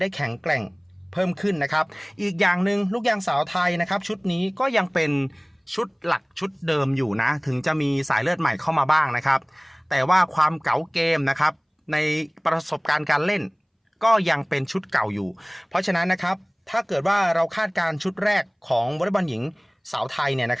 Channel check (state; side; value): identical; both; correlation 1.00